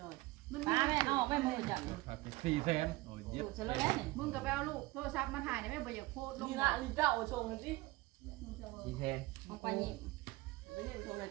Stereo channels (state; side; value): quieter; left; 20.5 dB